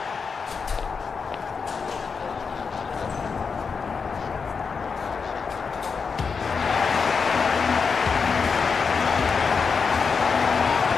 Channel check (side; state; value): right; quieter; 5.4 dB